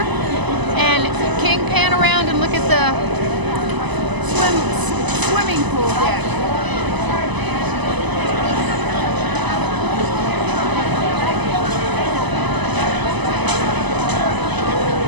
And King, pan around and look at the swimming pool deck.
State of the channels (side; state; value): left; late; 1.0 ms